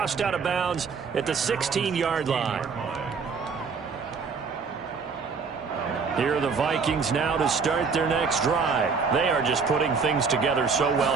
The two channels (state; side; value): quieter; left; 5.3 dB